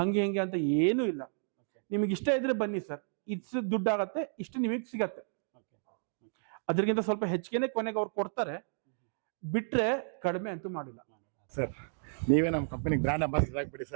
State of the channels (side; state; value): left; silent; digital silence